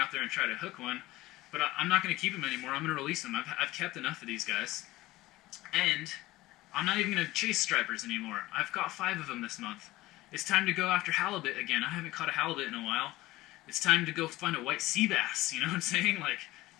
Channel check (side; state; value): right; quieter; 18.2 dB